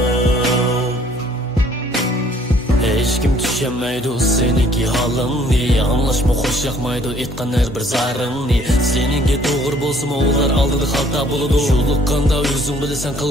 Hech kim tushunmaydi seniki holingni, anglashma xo'sh yoqmaydi aytgan har bir zaringni. Seninki to'g'ri bo'lsa ular oldida xalta bo'ladi, yo'liqqanda o'zing bilasan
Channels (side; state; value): both; normal; correlation 0.59